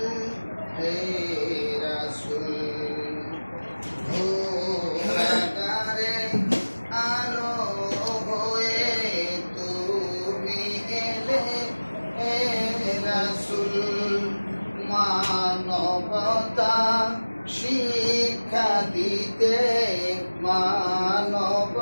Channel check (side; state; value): both; inverted; correlation -1.00